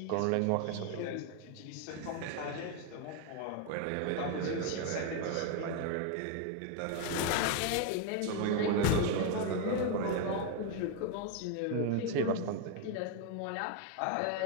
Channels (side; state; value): both; different; correlation 0.01